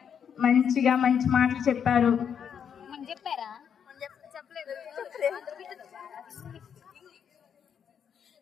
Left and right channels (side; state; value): right; quieter; 7.8 dB